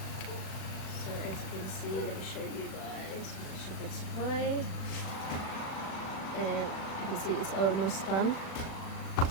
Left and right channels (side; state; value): right; late; 37 ms